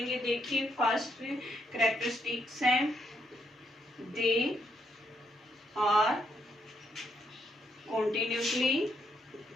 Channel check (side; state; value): both; normal; correlation 0.77